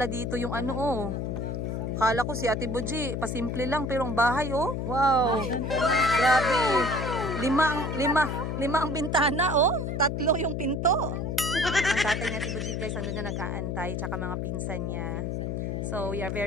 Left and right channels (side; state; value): left; noise; hum, 2 dB below the sound